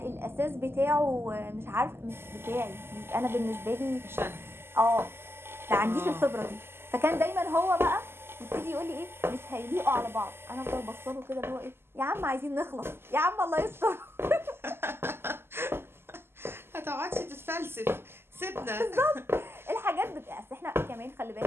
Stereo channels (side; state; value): left; late; 0.12 ms